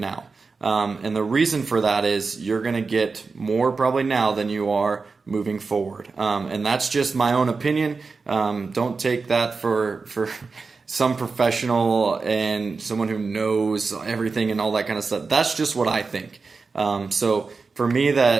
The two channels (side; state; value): left; quieter; 4.4 dB